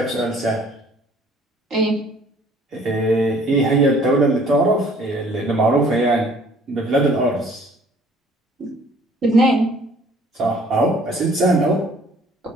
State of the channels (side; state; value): both; normal; correlation 0.56